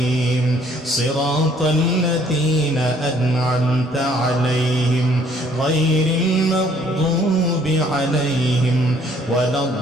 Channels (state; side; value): normal; both; correlation 0.61